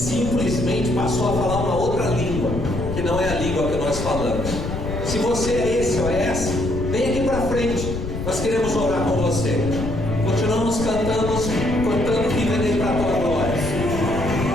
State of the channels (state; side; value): noise; left; rumble, 5 dB below the sound